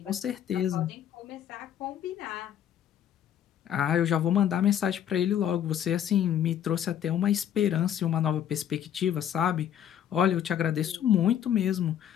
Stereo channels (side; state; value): right; quieter; 9.9 dB